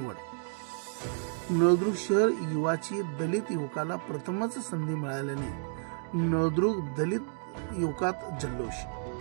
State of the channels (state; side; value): silent; left; 57 dB below the other